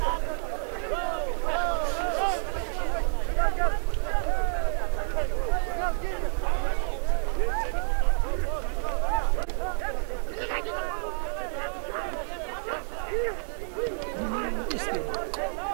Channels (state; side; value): silent; left; 59 dB below the other